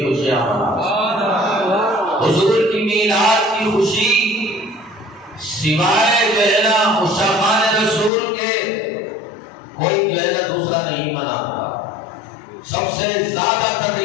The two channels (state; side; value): drops out; right; at 8.1 s